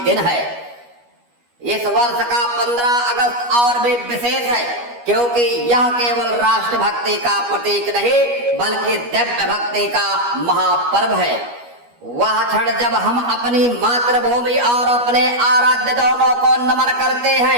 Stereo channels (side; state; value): left; late; 12 ms